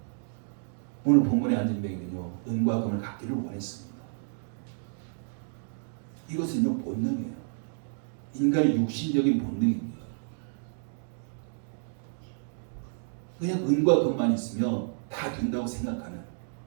오늘 본문의 안진뱅이는요, 은과 금을 갖기를 원했습니다. 이것은요, 본능이에요. 인간의 육신적인 본능입니다. 그냥 은과 금만 있으면 다 된다고 생각하는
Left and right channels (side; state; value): left; silent; digital silence